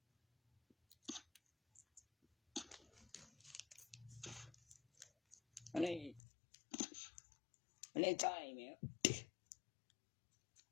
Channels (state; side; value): drops out; right; at 6.2 s